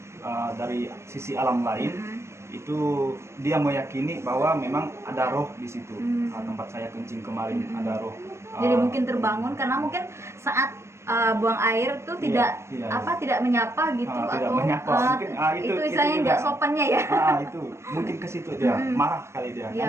dari sisi alam lain, itu dia meyakini bahwa memang ada roh di situ. Tempat saya kencing kemarin ada roh. Jadi mungkin terbangun karena mungkin saat buang air tuh tidak tidak menyapa gitu, tidak atau menyapa. Mungkin, itu istilahnya nggak sopannya ya. Itu mungkin ke situ dia marah kali dia.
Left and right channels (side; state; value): left; late; 0.13 ms